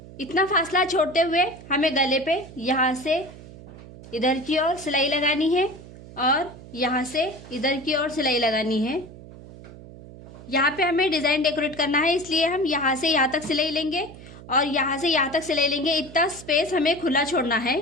इतना फासला छोड़ते हुए हमें गले पे यहाँ से इधर की ओर सिलाई लगानी है और यहाँ से इधर की ओर सिलाई लगानी है। यहाँ पे हमें डिज़ाइन डेकोरेट करना है, इसलिए हम यहाँ से यहाँ तक सिलाई लेंगे और यहाँ से यहाँ तक सिलाई लेंगे। इतना स्पेस हमें खुला छोड़ना है।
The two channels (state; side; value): noise; right; hum, 17 dB below the sound